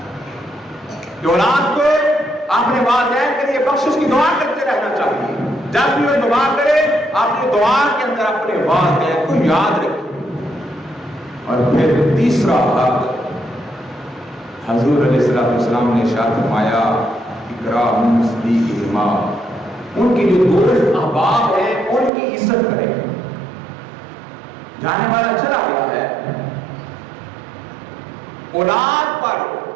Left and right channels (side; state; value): left; drops out; at 22.1 s